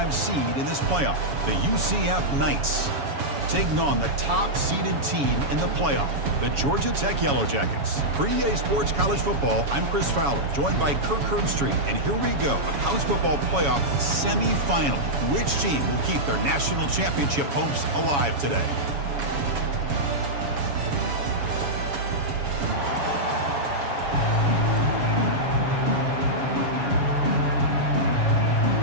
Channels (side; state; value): left; late; 7.1 ms